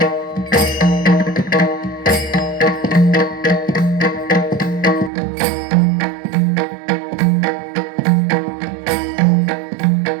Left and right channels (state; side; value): drops out; left; at 5.1 s